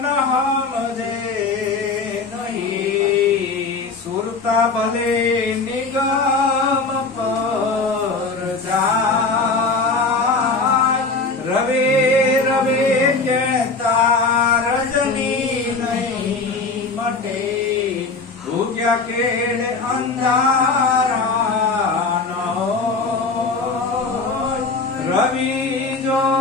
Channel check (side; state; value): right; quieter; 4.0 dB